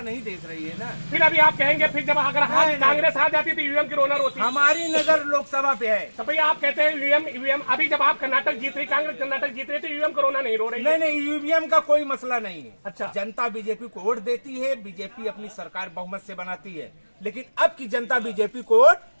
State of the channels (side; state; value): both; inverted; correlation -1.00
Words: नहीं देख रही है ना। फिर अभी आप कहेंगे फिर जब अगर कांग्रेस आ जाती तो ईवीएम की रोनर होती। हमारी नजर लोकसभा पे है। तो भैया आप कहते हैं ईवीएम अभी जब आप कर्नाटक जीत रही, कांग्रेस कर्नाटक जीत रही, तो ईवीएम को रोना नहीं रो रही? नहीं, ईवीएम का कोई मसला नहीं है। अच्छा, जनता जनता बीजेपी को वोट देती है, बीजेपी अपनी सरकार बहुमत से बनाती है, लेकिन अब की जनता बीजेपी को वोट